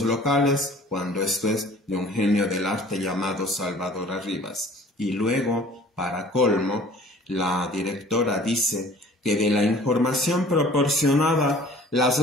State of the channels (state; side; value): normal; both; correlation 0.50